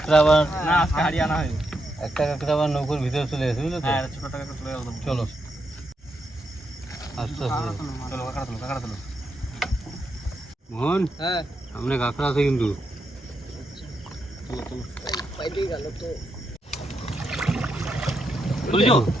একটা আবার না আজকে হারিয়ে আনা হয়নি। একটা কাঁকড়া আবার নৌকোর ভিতরে চলে গেছে বুঝলো তো। হ্যাঁ ছোট টাকা চলে গেল। চলো আস্তে আস্তে চলো কাঁকড়া তুলো, কাঁকড়া তুলো। মোহন হ্যাঁ সামনে কাঁকড়া আছে কিন্তু। তুলো তুলো। পাইতে গেল তো। তুলছো?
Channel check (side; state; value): both; normal; correlation 0.82